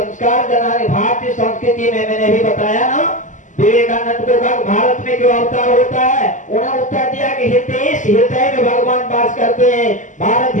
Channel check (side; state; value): right; late; 0.37 ms